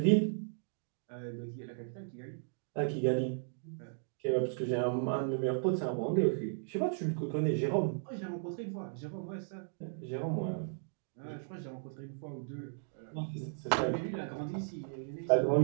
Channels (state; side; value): silent; left; digital silence